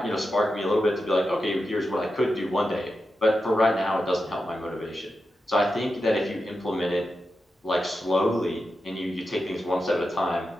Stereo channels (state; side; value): normal; both; correlation 0.89